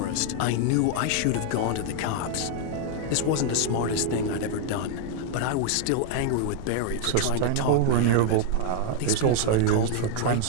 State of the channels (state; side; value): different; both; correlation 0.00